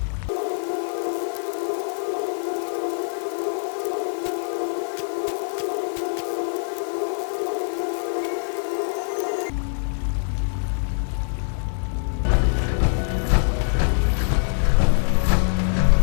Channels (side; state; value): right; silent; 61 dB below the other